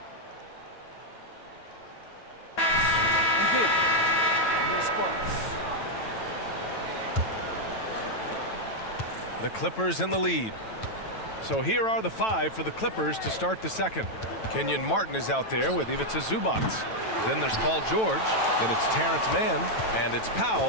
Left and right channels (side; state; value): right; late; 9.1 ms